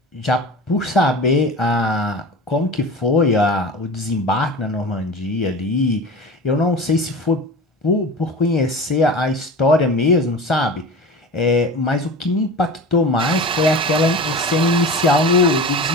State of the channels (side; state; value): both; normal; correlation 0.33